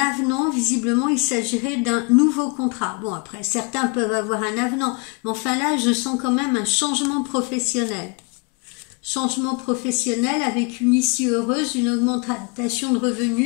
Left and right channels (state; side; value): quieter; right; 32.0 dB